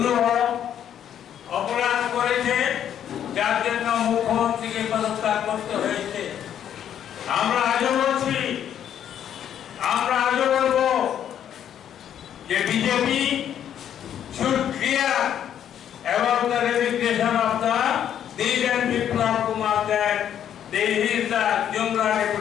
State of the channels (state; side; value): quieter; right; 9.8 dB